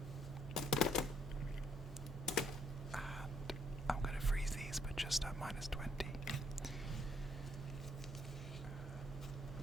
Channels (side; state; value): both; normal; correlation 0.70